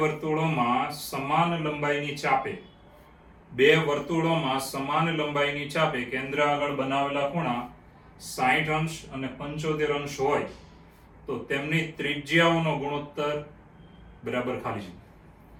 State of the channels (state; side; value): identical; both; correlation 1.00